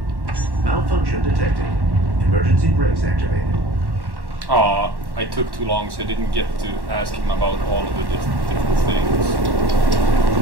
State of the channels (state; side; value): late; left; 1.1 ms